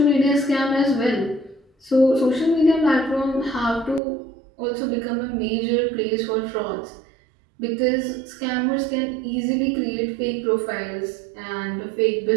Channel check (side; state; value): left; drops out; at 4.0 s